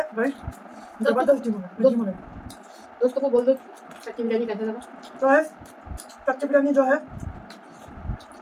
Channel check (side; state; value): both; identical; correlation 1.00